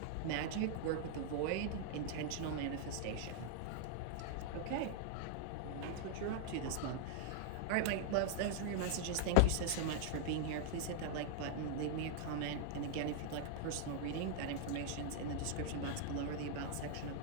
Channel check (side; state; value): both; different; correlation 0.00